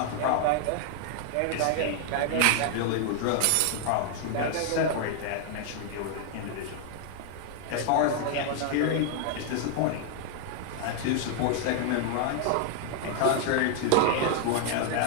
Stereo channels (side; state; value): both; different; correlation 0.00